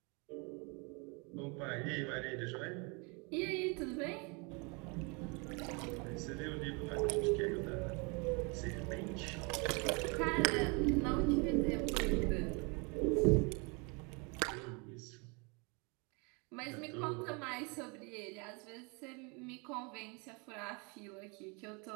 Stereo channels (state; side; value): quieter; left; 31.4 dB